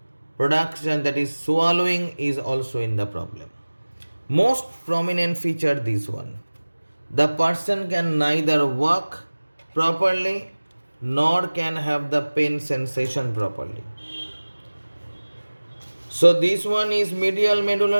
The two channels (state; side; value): inverted; both; correlation -1.00